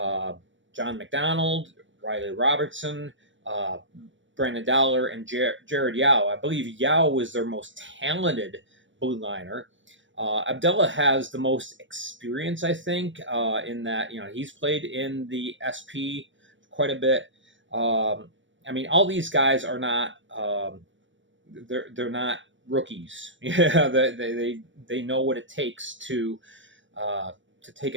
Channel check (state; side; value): late; left; 0.55 ms